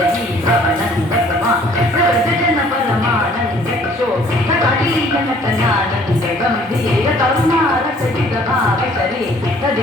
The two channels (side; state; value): both; normal; correlation 0.57